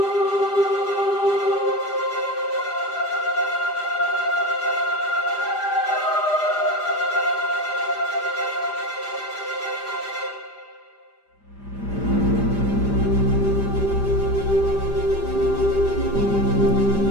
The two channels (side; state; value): right; late; 5.0 ms